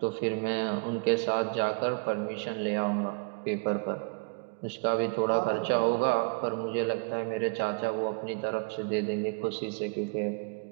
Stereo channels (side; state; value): left; quieter; 30.6 dB